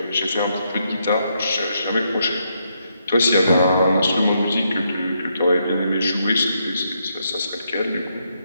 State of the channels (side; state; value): both; inverted; correlation -0.78